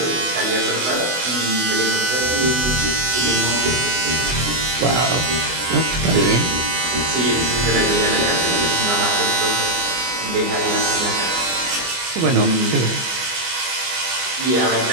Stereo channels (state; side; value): late; left; 24 ms